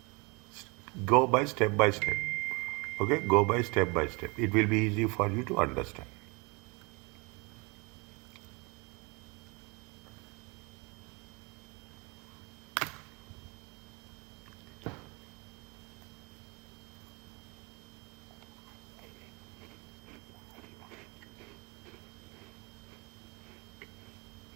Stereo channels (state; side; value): quieter; left; 28.6 dB